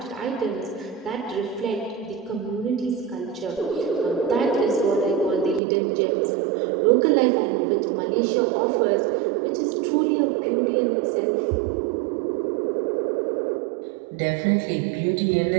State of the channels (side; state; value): left; drops out; at 5.6 s